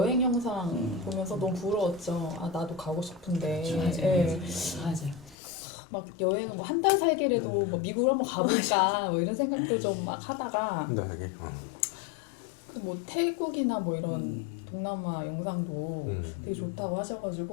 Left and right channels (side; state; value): right; drops out; at 5.4 s